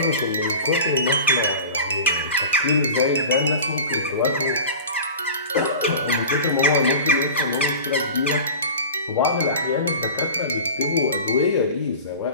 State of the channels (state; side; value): inverted; both; correlation -0.34